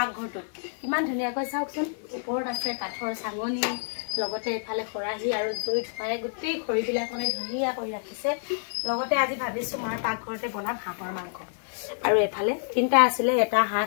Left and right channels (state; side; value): silent; right; 59 dB below the other